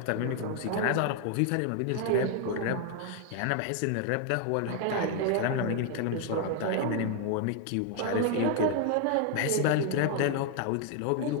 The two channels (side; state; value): both; different; correlation 0.00